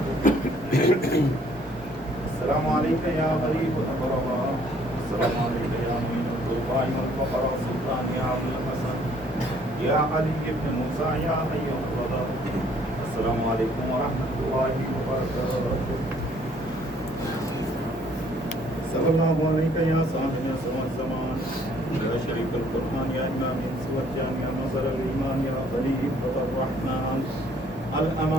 السلام عليك يا غريب الأغرباء. السلام عليك يا معين الضعفاء والفقراء سلطان يا أبو الحسن يا علي بن موسى يا حي القدر. السلام عليكم ورحمة الله وبركاته. صلى الله عليك يا صاحب سوى الزمان يا شريف القرآن يا إمام سوى يا نصر الإيمان يا خليفة الرحمن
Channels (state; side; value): normal; both; correlation 0.61